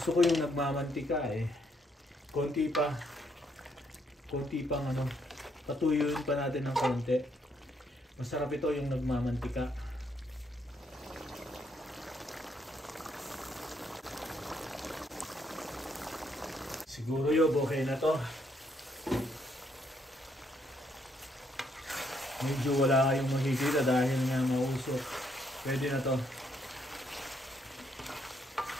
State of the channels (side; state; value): both; normal; correlation 0.73